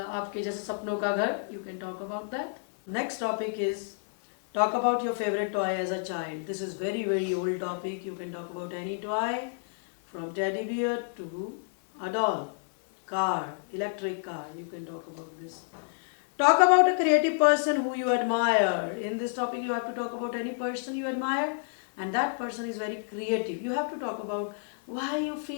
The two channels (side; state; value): right; silent; digital silence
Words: आपके जैसे सपनों का घर. You can talk about that. Next topic is talk about your favorite toy as a child. This is very old topic. You can talk about any toy from teddy bear to a doll, car, electric car. You can talk about this. Talk about a creative person who you admire. In this topic you have to talk about any person you admire and that person is very creative. You have to talk about why you